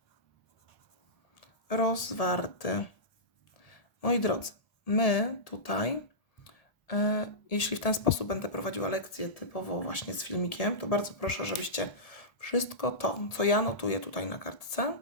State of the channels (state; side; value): late; right; 1.7 ms